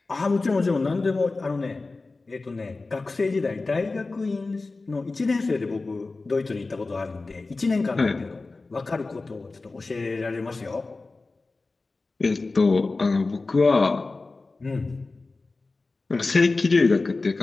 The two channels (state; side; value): quieter; right; 3.6 dB